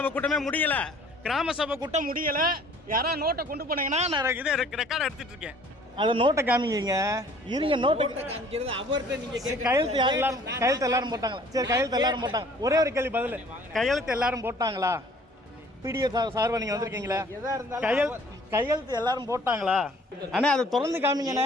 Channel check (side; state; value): both; normal; correlation 0.55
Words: கூட்டமே முடியலை, கிராம சபை கூட்டம் முடியலை. யாராவது நோட்டை கொண்டு போனீங்கன்னா நான் இதை ரெக்கார்டு எடுத்துட்டு இருக்கேன். அதை நோட்டை காமிங்க. இருங்க, நோட்டை கையெழுத்து எல்லாரும் போட்டாங்களா? சரி, கையெழுத்து எல்லாரும் போட்டாங்க. ஒரே ஒரு கேள்வி பதில், கையெழுத்து எல்லாரும் போட்டாங்களா? பிடிஓ சார்பா நீங்க வந்திருக்கீங்களா? கையெழுத்து எல்லாரும் போட்டாங்களா? அண்ணா அதை திறந்து காமிங்கண்ணே.